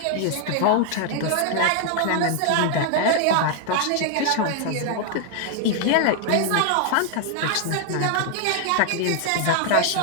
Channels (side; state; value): both; different; correlation 0.00